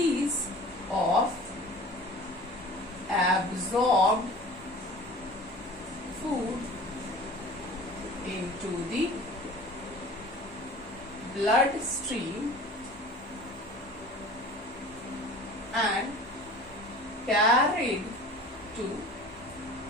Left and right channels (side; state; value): both; normal; correlation 0.42